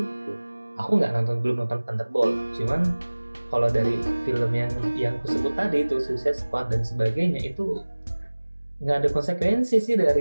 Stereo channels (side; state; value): both; inverted; correlation -1.00